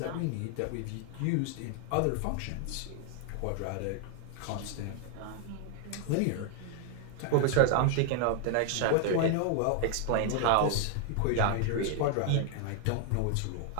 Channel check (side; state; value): both; different; correlation 0.00